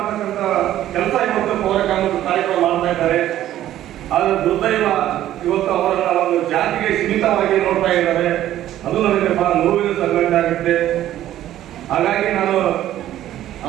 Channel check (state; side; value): quieter; left; 12.8 dB